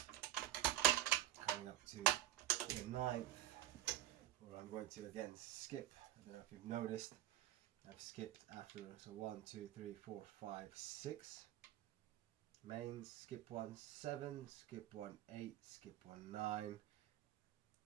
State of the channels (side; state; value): left; quieter; 13.9 dB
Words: coming up to the 9th, where I'm going to again skip. I don't know if you've noticed, I've skipped after, so 1, 2, 3, 4, 5, 6 mains, skip 1, 7, skip 1, 8, skip 1, 9,